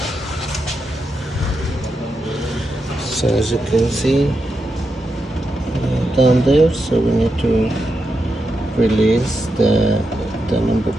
as you can see down there, so we need to release the number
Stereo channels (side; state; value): both; normal; correlation 0.86